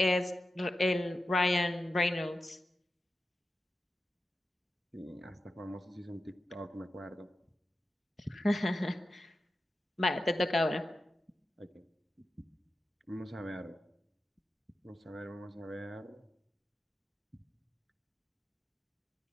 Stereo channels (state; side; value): normal; both; correlation 0.92